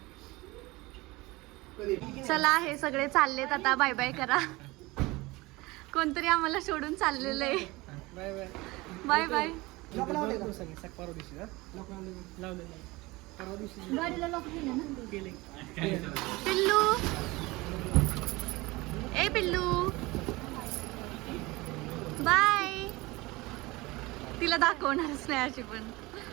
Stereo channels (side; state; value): left; quieter; 21.9 dB